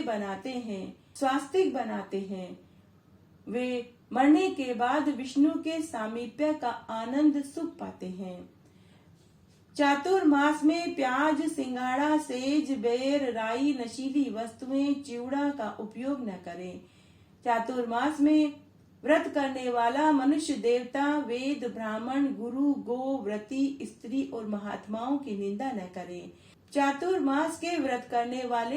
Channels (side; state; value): both; identical; correlation 1.00